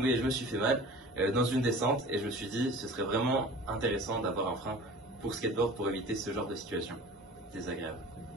et je me suis fait mal dans une descente et je me suis dit ce serait vraiment intéressant d'avoir un frein pour skateboard pour éviter ce genre de situation désagréable.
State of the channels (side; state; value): both; normal; correlation 0.41